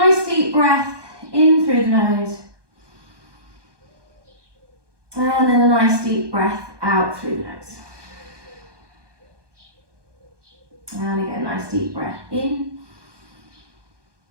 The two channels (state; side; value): late; left; 1.2 ms